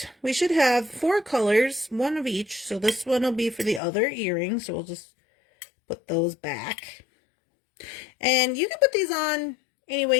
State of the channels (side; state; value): right; drops out; at 3.8 s